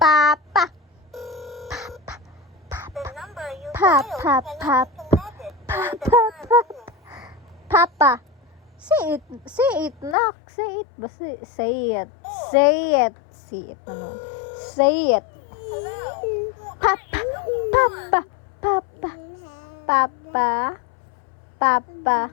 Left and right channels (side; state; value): right; drops out; at 10.2 s